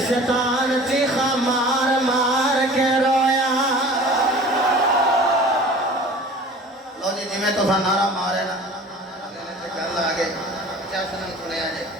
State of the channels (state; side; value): normal; both; correlation 0.43